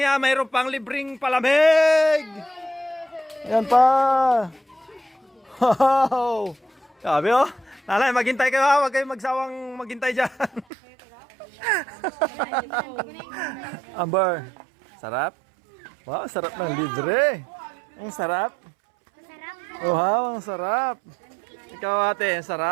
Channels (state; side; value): drops out; left; at 10.7 s